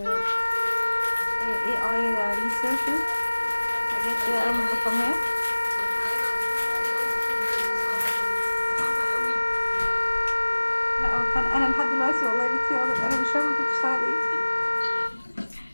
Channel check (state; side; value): inverted; both; correlation -1.00